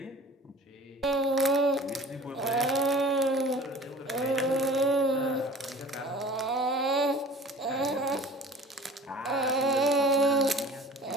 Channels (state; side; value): normal; both; correlation 0.45